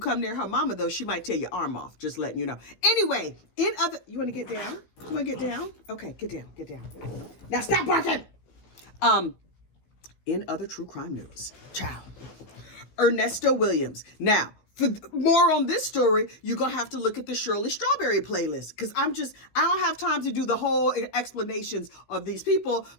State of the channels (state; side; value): late; right; 16 ms